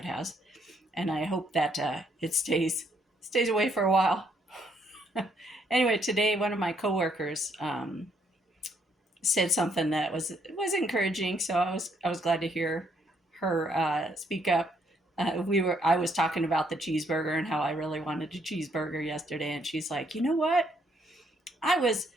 has, and I hope that it stays away for a while. Anyway, today one of my coworkers said something that was encouraging. So I was glad to hear her speak up. I was talking about the cheeseburger and how I really wanted a cheeseburger yesterday, and she's like, you know what? I was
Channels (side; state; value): both; normal; correlation 0.71